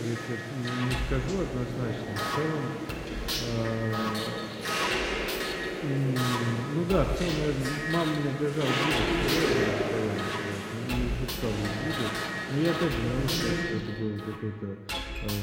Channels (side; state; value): both; identical; correlation 1.00